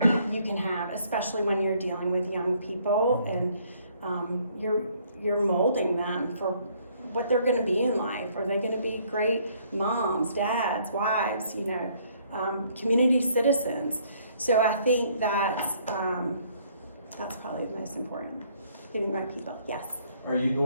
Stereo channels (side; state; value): both; inverted; correlation -0.64